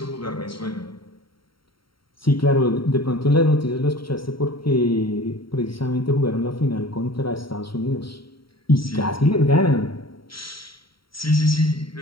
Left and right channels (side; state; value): right; late; 0.74 ms